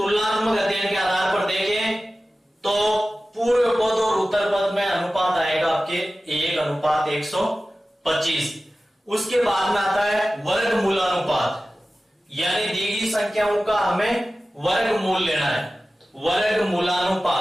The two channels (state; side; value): normal; both; correlation 0.95